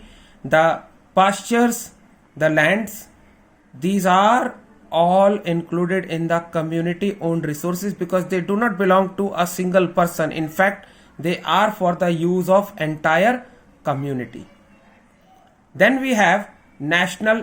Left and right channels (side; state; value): both; identical; correlation 1.00